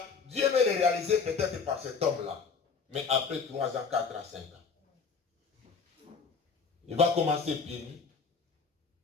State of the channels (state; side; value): quieter; right; 5.3 dB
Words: Dieu veut le réaliser peut-être par cet homme-là. Mais après 3 ans, 4 ans, 5 ans. Il va commencer pieds nus.